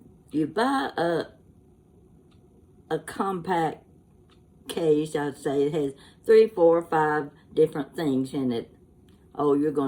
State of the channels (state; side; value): identical; both; correlation 1.00